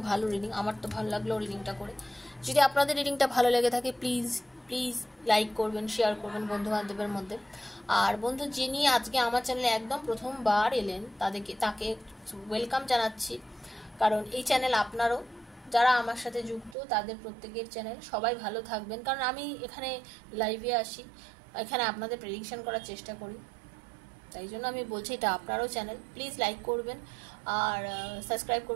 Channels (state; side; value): drops out; left; at 16.8 s